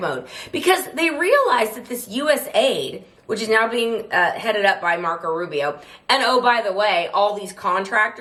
mode because they realize that this USAID, which is now being headed up by Marco Rubio, and oh, by the way, all these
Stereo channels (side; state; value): both; identical; correlation 1.00